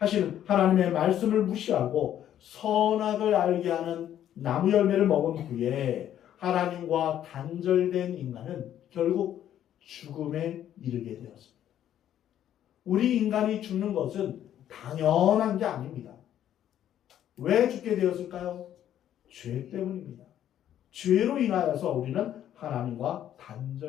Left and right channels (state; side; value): quieter; right; 11.0 dB